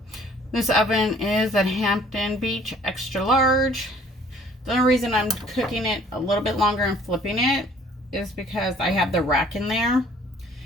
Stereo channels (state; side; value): normal; both; correlation 0.57